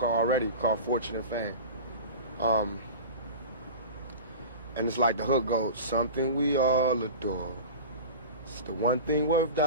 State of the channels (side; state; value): both; inverted; correlation -0.33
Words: Fortune and Fame. And it's like the hook goes, something we all adore. It's the one thing worth